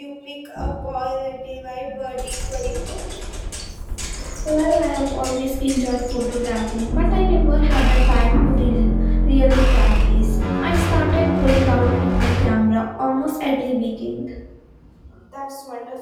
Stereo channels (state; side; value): identical; both; correlation 1.00